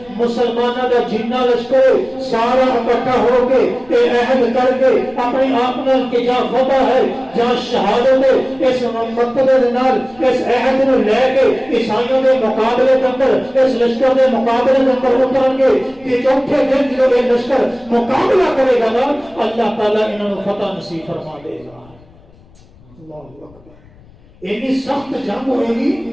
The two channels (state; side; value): noise; left; rumble, 27 dB below the sound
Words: مسلمانوں کا جتنا لشکر سارا اکٹھا ہو کے عہد کر کے اپنی آپ کہ جہاں فتح ہے جہاں شہادت ہے اس مقصد اس عہد کو لے کے عیسائیوں کے مقابلے کے اندر اس لشکر کے مقابلے کے اندر اتریں گے کہ چوتھے دن جو یہ لشکر مقابلہ کرے گا نا اللہ تعالیٰ انہوں فتح نصیب فرما دے گا۔ اللہ اکبر، اتنی سخت جنگ ہوئے گی۔